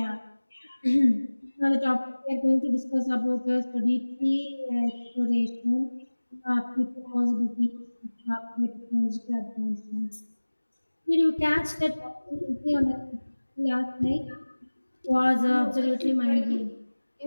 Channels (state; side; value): inverted; both; correlation -1.00